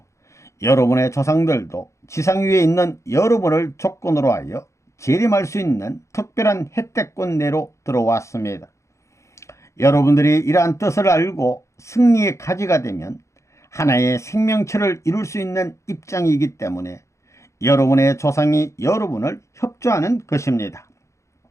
여러분의 조상들도 지상 위에 있는 여러분을 조건으로 하여 재림할 수 있는 특별한 혜택권 내로 들어왔습니다. 여러분들이 이러한 뜻을 알고 승리의 가지가 되면 하나의 생명체를 이룰 수 있는 입장이기 때문에 여러분의 조상이 여러분을 협조하는 것입니다.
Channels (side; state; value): right; late; 0.14 ms